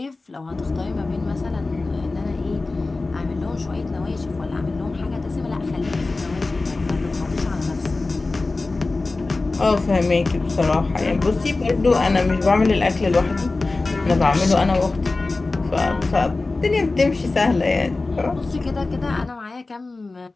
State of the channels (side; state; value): right; quieter; 3.4 dB